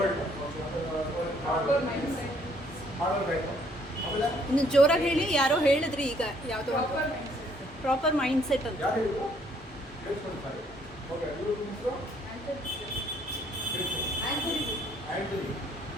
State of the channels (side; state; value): both; normal; correlation 0.65